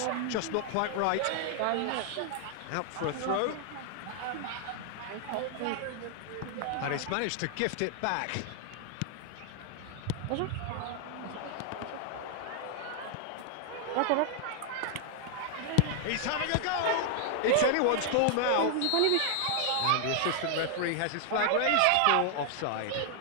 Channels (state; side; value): different; both; correlation 0.00